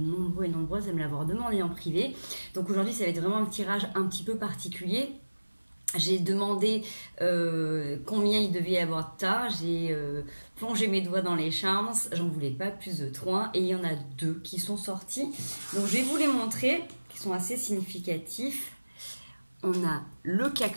et nombreuses à me l'avoir demandé en privé. Donc aujourd'hui ça va être vraiment un tirage un petit peu particulier. J'ai demandé combien il devait y avoir de tas, j'ai plongé mes doigts dans les charms, j'en voulais pas plus de 3 et il y en a 2 qui sont sortis. Donc je vais vous les montrer, qui sont assez significatifs. On a le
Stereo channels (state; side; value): inverted; both; correlation -1.00